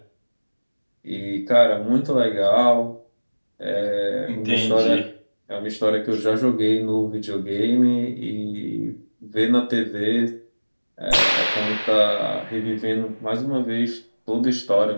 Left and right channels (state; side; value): inverted; both; correlation -1.00